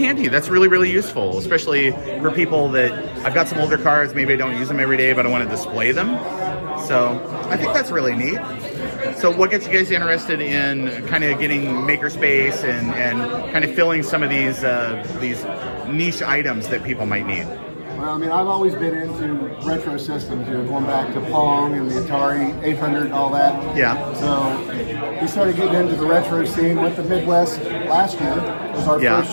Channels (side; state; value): both; inverted; correlation -1.00